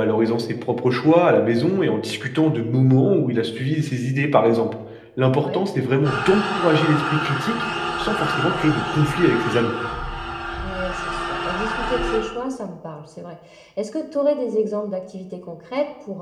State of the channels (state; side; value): identical; both; correlation 1.00